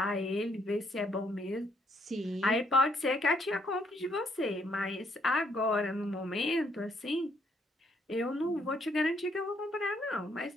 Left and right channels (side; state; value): both; normal; correlation 0.70